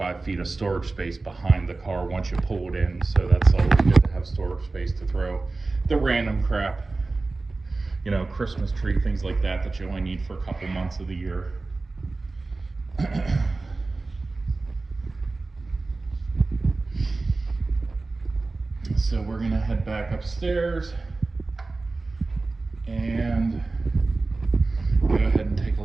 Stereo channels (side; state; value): left; quieter; 3.5 dB